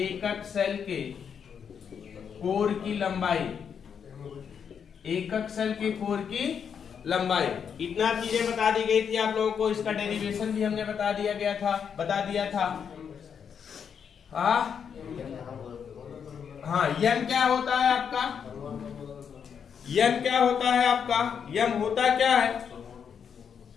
सेल के कोर की लंबाई, एकक सेल के कोर की लंबाई। इतना चीजें बता दी गई थी आप लोगों को। इसका डेरिवेशन भी हमने बता दिया था। हाँ, यम क्या होता है आपका? यम क्या होता है आपका? यम होता क्या है?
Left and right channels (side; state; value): right; quieter; 7.3 dB